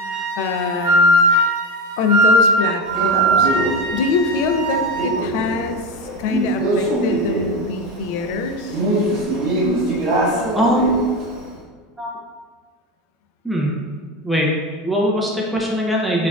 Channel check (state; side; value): normal; both; correlation 0.20